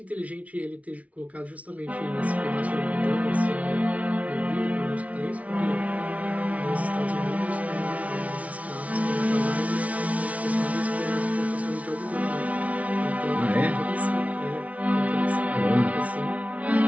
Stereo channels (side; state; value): left; late; 0.067 ms